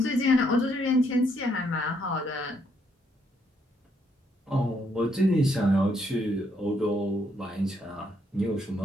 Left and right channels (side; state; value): both; normal; correlation 0.73